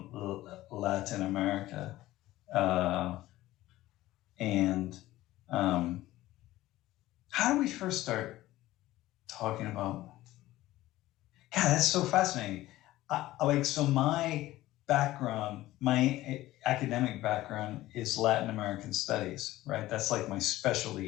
Latin America, and how do we first start talking about? God, that's so fascinating. My background, my academic background is Latin American studies, right? That's like my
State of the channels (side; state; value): right; quieter; 16.3 dB